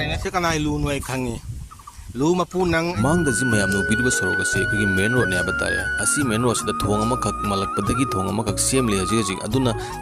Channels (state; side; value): identical; both; correlation 1.00